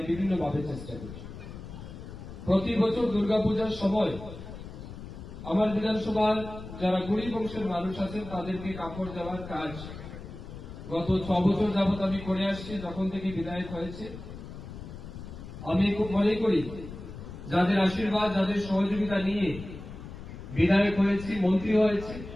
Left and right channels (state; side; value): noise; left; rumble, 12 dB below the sound